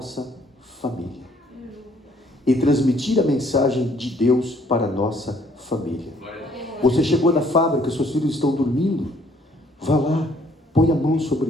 família e transmitir a mensagem de Deus para a nossa família. Você chegou na fábrica, seus filhos estão dormindo, vá lá, põe a mão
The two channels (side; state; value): both; normal; correlation 0.63